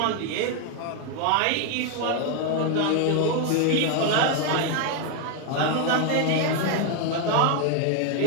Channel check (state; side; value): different; both; correlation 0.01